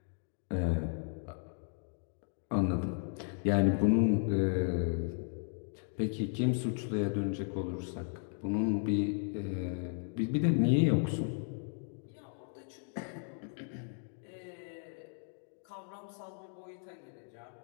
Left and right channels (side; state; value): right; silent; 54 dB below the other